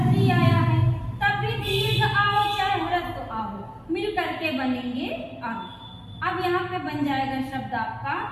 री आया है, तब भी दीर्घ आ हो चाहे ह्रस्व आ हो मिल करके बनेंगे आ। अब यहाँ पे बन जाएगा शब्द आपका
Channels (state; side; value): identical; both; correlation 1.00